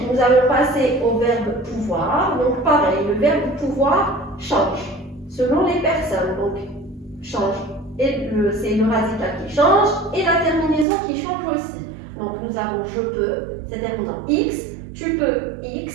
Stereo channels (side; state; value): left; drops out; at 10.9 s